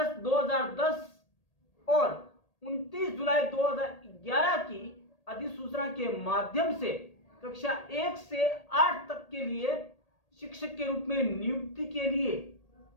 2010 और 29 जुलाई 2011 की अधिसूचना के माध्यम से कक्षा 1 से 8 तक के लिए शिक्षक के रूप में नियुक्ति के लिए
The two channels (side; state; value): right; late; 1.8 ms